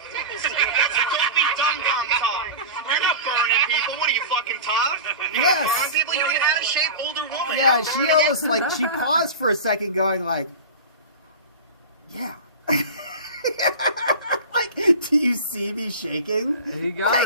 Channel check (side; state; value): both; inverted; correlation -0.30